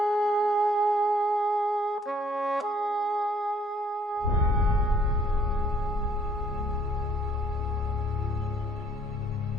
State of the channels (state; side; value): normal; both; correlation 0.62